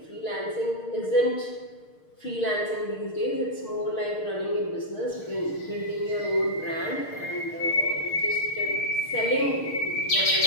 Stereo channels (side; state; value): right; late; 6.5 ms